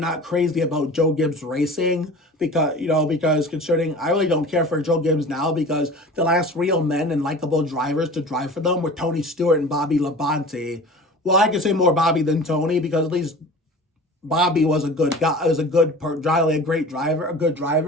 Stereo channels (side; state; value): both; normal; correlation 0.39